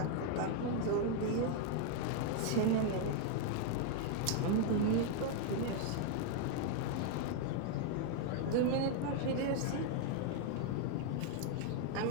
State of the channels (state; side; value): different; both; correlation 0.00